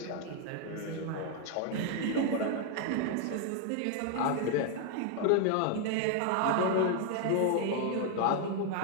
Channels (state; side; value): different; both; correlation 0.00